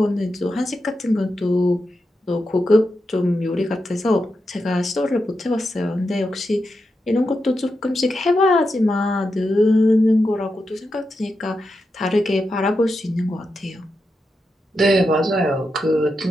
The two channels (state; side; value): normal; both; correlation 0.87